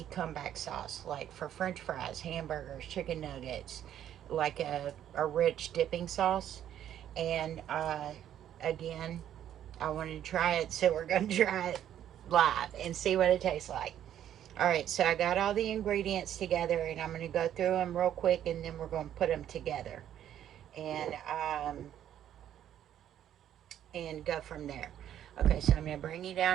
comeback sauce, like for french fries, hamburgers, chicken nuggets, like a rich dipping sauce. And again, I wanted to try it, so we're going to try it live and see what it tastes like. Alright, so I got all the ingredients together, and I'm going to go through them real quick, and then we're going to put them together and go from there. Okay, so I'm going to bring you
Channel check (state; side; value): quieter; left; 10.8 dB